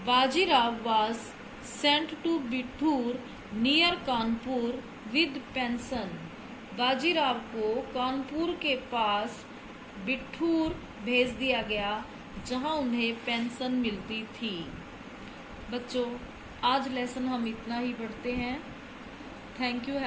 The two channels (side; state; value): both; identical; correlation 1.00